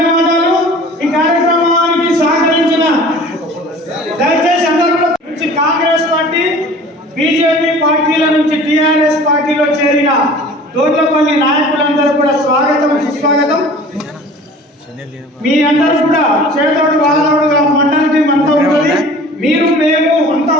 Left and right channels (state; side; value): normal; both; correlation 0.45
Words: ఈ కార్యక్రమానికి సహకరించిన దయచేసి అందరూ నుంచి కాంగ్రెస్ పార్టీ, బీజేపీ పార్టీల నుంచి టీఆర్ఎస్ పార్టీలో చేరిన దోర్లపల్లి నాయకులందరూ కూడా స్వాగతం, సుస్వాగతం. మీ అందరూ కూడా చేతోడు వాదోడుగా మండలి అంతా ఉంటుంది. మీరు మేము అంతా